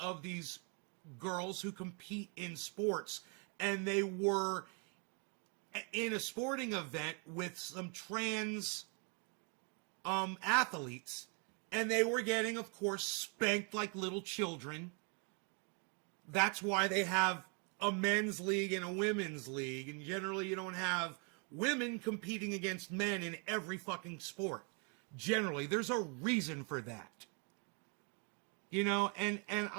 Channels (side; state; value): left; quieter; 36.7 dB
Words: these girls who compete in sports, and they were in a sporting event with some trans athletes, and they were getting, of course, spanked like little children. That's why they have a men's league and a women's league, and generally you don't have women competing against men in every fucking sport. Generally, there's a reason for that. And